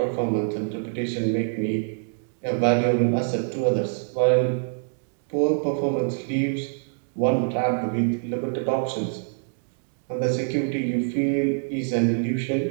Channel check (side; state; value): left; silent; digital silence